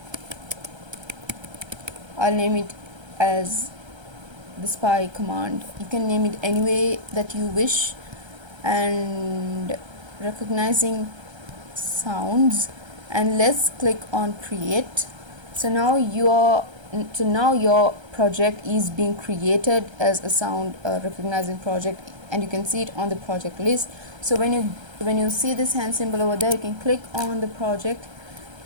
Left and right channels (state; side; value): late; left; 1.3 ms